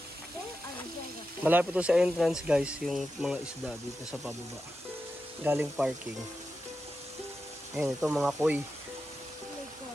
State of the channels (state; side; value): normal; both; correlation 0.90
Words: There are bigger fish. Malapit to sa entrance guys, yung mga isda dito sa pababa. Galing parking. Ayun, ito mga koi. Oh my